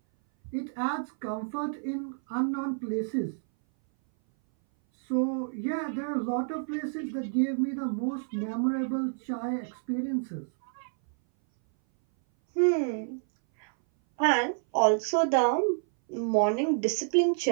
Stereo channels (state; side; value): silent; left; 58 dB below the other